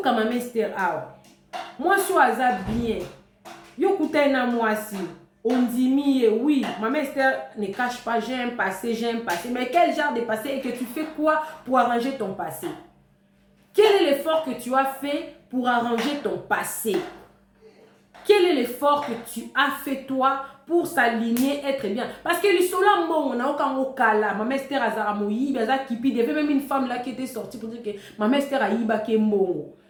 Maman Esther awa. Moi je suis bien. Yo kouta na moi si. On dit oui, Maman Esther ne cache pas, j'ai un passé. Mais quel genre de passé et que tu fais quoi pour arranger ton passé? Quel est l'effort que tu as fait pour arranger ton passé? Quel est l'effort que tu as fait toi pour s'aligner, être bien? Parce que le sola on a aucun okala. Maman Esther azara moyi, baza kipi. Il y avait même une femme là qui était sortie pour dire que Maman Esther a yiba ke mbongo.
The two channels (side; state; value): both; identical; correlation 1.00